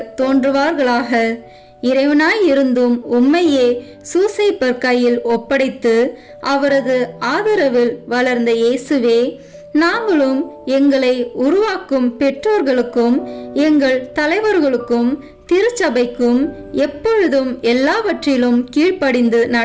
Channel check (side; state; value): both; identical; correlation 1.00